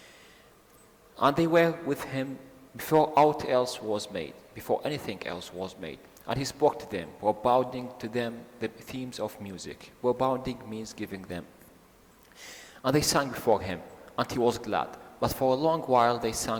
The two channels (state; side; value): identical; both; correlation 1.00